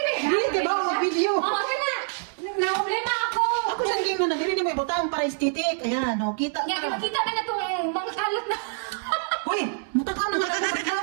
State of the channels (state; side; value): silent; left; 61 dB below the other